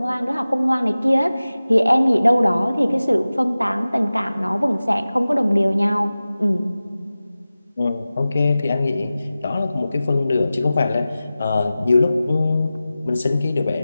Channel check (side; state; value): both; inverted; correlation -0.96